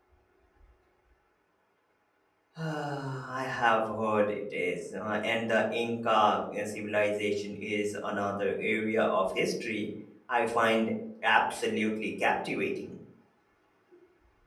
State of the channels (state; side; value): identical; both; correlation 1.00